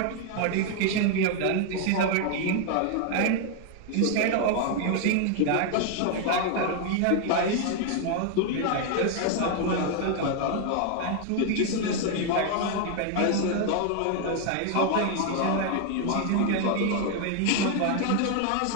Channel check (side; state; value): both; different; correlation 0.00